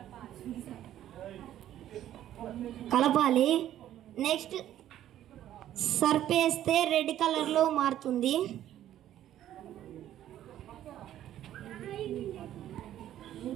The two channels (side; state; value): left; quieter; 12.0 dB